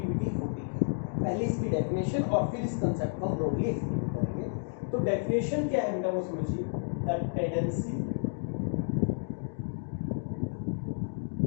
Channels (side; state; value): right; silent; digital silence